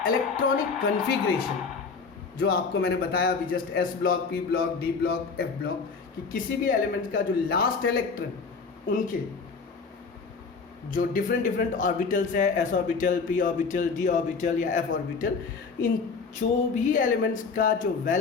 इलेक्ट्रॉनिक कॉन्फ़िगरेशन जो आपको मैंने बताया अभी just S block, P block, D block, F block, कि किसी भी एलिमेंट का जो लास्ट इलेक्ट्रॉन उनके जो डिफरेंट ऑर्बिटल्स है, S orbital, P orbital, D orbital या एफ ऑर्बिटल, इन जो भी एलिमेंट्स का जो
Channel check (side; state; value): right; quieter; 4.9 dB